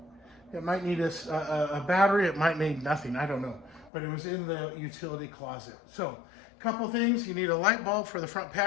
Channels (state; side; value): drops out; right; at 3.9 s